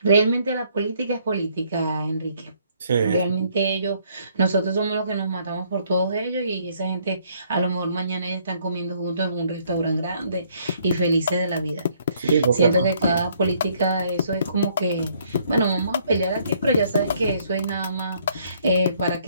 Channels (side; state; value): both; inverted; correlation -0.65